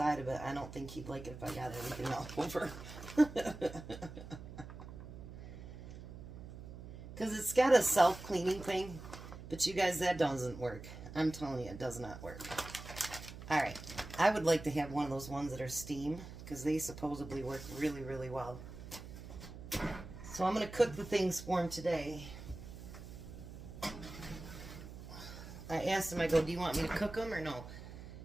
of it, I don't think he'd like it if I got everything all over. Because it's got a self-cleaning thing, but you guys, that doesn't work. I'm telling you, it does not work. Alright, I would like to have one of those ones that are steam, because they supposedly work really, really well. So I'm going to cook the things for him today. I asked him, I go, do you want me to cook them or no?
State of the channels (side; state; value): right; noise; hum, 12 dB below the sound